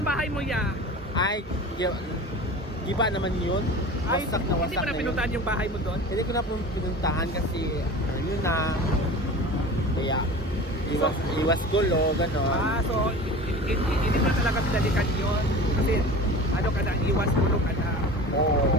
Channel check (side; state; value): both; normal; correlation 0.36